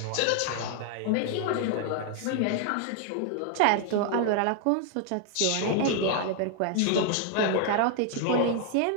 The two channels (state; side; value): different; both; correlation 0.00